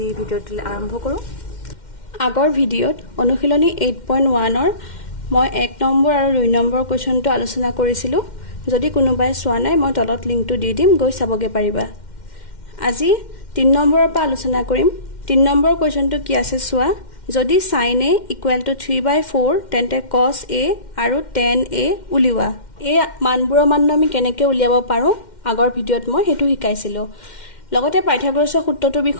ভিডিঅ'টো আৰম্ভ কৰো আগৰ ভিডিঅ'ত অনুশীলনী 8.1 ৰ মই 1 নম্বৰ আৰু 2 নম্বৰ কোৱেশ্চনটো আলোচনা কৰিছিলো যদি কোনোবাই চোৱা নাই মই তলত লিংকটো দি দিম গৈ চাবগে পাৰিবা আজি 3 নম্বৰৰ পৰা আলোচনা কৰিম 3 নম্বৰ কোৱেশ্চনটো কি আছে চোৱা যদি sin a = 3/4 তেন্তে cos a আৰু tan a উলিওৱা এই মানবোৰৰ মান আমি কেনেকৈ উলিয়াব পাৰো আগৰ ভিডিঅ'ত মই হেতু শিকাইছিলো লগতে পাইথাগোৰাছৰ সূত্ৰটোৰ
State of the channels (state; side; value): late; right; 2.1 ms